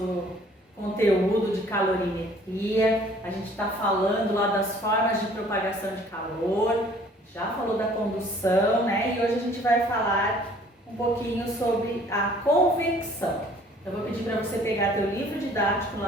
conteúdo de calorimetria. A gente está falando lá das formas de propagação de calor, já falou da condução, né? E hoje a gente vai falar um pouquinho sobre a convecção. Eu vou pedir para você pegar teu livro didático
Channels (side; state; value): both; normal; correlation 0.55